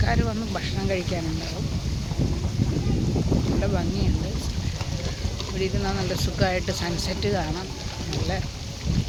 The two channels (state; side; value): identical; both; correlation 1.00